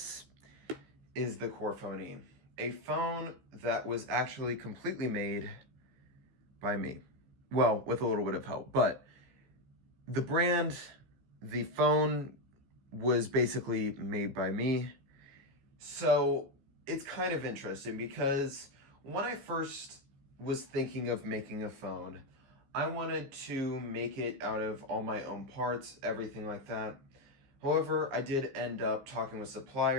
is the CorePhone E, a phone that was actually completely made by me. Well, with a little bit of help, but the brand, the phone was basically made by me. So it's kind of interesting because when I first was thinking of making a phone, I wanted to make it out of all my own parts, everything like that. However, I did end up talking with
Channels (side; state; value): left; late; 15 ms